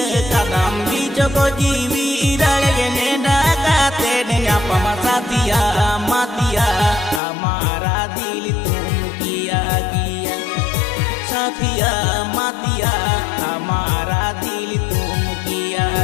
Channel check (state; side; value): drops out; right; at 7.2 s